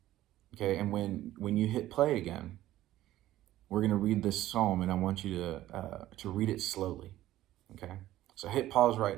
Okay, and when you hit play again, we're going to read this psalm, and I want you to read it slowly. Okay, so hit pause right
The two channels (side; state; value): left; quieter; 14.4 dB